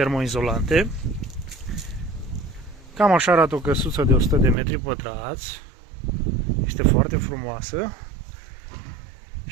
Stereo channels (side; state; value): left; drops out; at 4.5 s